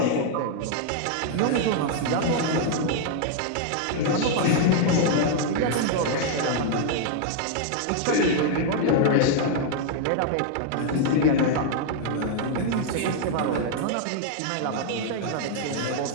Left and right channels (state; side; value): different; both; correlation -0.01